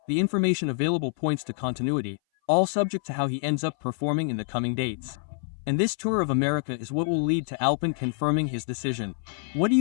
the information available points to continuity, all subject to how he ends up performing in the coming dates. And this tour of America is what will lead to Alpine confirming his decision. What do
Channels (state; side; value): silent; right; 58 dB below the other